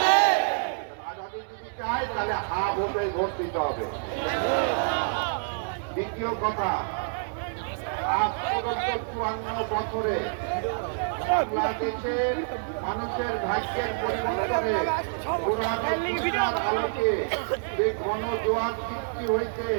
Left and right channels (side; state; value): left; silent; digital silence